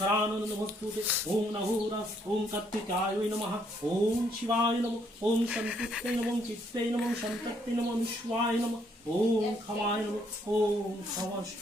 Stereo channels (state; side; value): normal; both; correlation 0.70